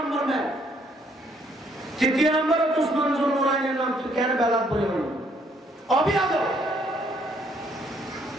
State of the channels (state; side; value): normal; both; correlation 0.68